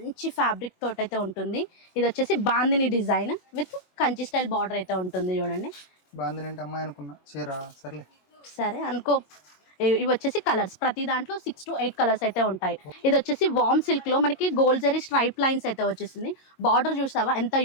ఫ్యాబ్రిక్ తోటి అయితే ఉంటుంది. ఇది వచ్చేసి bandhani design with Kanchi style border అయితే ఉంటుంది. చూడండి, బాందిని అంటే అమ్మాయి అనుకున్నా, చీరా సర్లే. సరే అనుకో. ఇవి వచ్చేసి కలర్స్, ప్రతి దాంట్లో 6 to 8 కలర్స్ అయితే ఉంటాయి. ఇది వచ్చేసి వామ్ సిల్క్ లో మనకి గోల్డ్ జరీ స్ట్రైప్ లైన్స్ అయితే వచ్చేసింది. బార్డర్ చూసావా ఎంత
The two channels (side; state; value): right; late; 22 ms